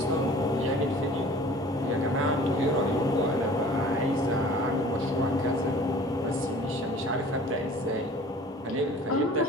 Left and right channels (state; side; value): normal; both; correlation 0.47